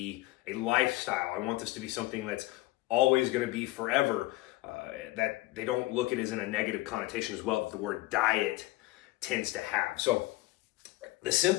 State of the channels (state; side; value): quieter; right; 18.8 dB